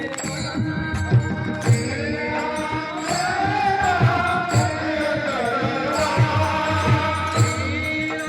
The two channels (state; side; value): identical; both; correlation 1.00